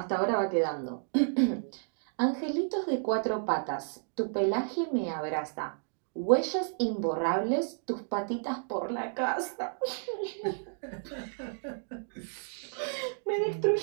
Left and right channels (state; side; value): silent; left; digital silence